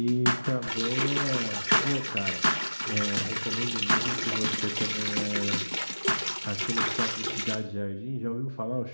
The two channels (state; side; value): inverted; both; correlation -1.00